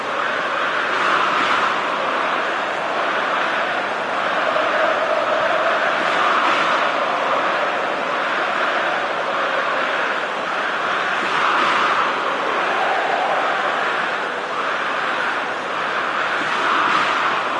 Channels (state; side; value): identical; both; correlation 1.00